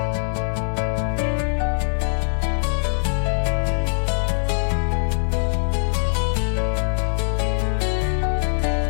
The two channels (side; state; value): right; silent; digital silence